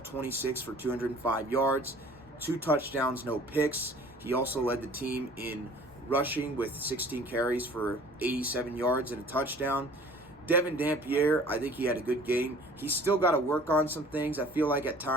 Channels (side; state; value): both; normal; correlation 0.49